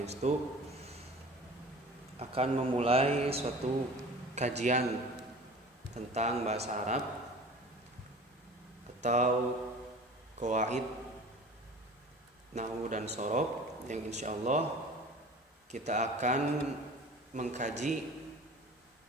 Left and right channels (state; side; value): normal; both; correlation 0.41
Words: akan memulai suatu kajian tentang bahasa Arab atau qawaid nahwu dan shorof yang insyaallah kita akan mengkaji